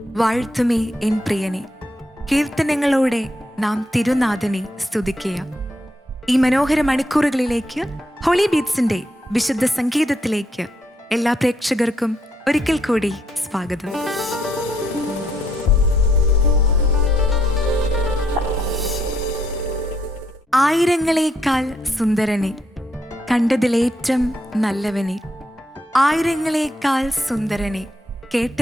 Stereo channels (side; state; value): both; normal; correlation 0.75